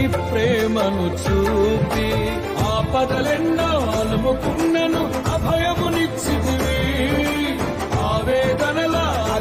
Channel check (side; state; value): both; identical; correlation 1.00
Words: ప్రేమను చూపి. ఆపదలెన్నో అలుముకున్నను అభయమునిచ్చితివి. ఆవేదనల